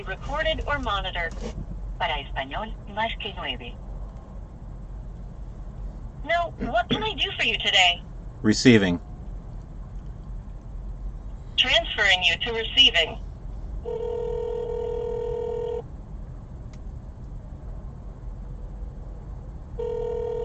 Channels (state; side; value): identical; both; correlation 1.00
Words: recorded or monitored. Para español, marque 9. No, what can I do for you today? Receiving. Transferring you to receiving.